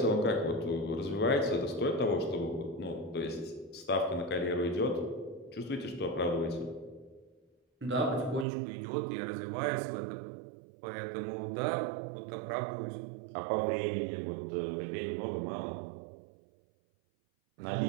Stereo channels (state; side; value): drops out; left; at 8.5 s